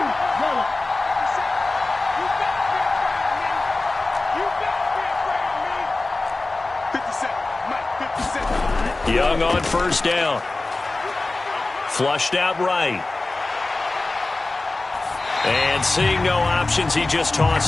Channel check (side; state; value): right; quieter; 3.2 dB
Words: Young on first down. Flushed out right. And seeing no options, he just